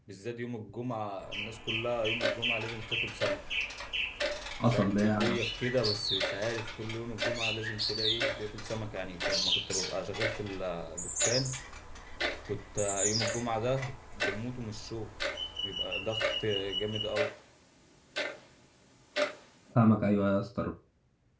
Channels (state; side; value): identical; both; correlation 1.00